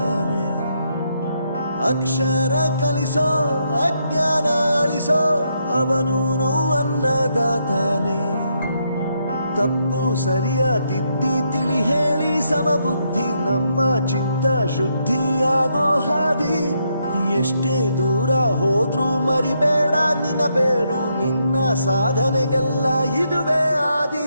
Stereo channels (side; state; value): both; inverted; correlation -0.77